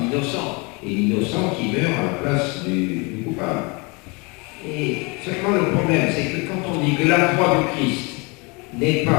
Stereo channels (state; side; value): quieter; right; 29.2 dB